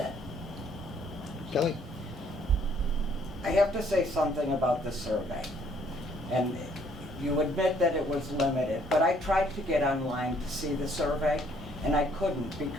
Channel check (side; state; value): both; normal; correlation 0.64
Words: Kelly? I have to say something about the survey. And you admit that it was limited, but I tried to get online to see the survey, and I couldn't